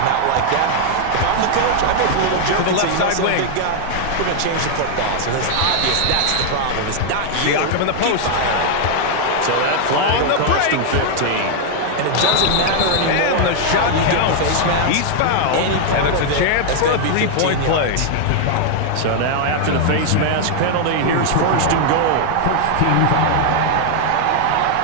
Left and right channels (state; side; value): different; both; correlation 0.00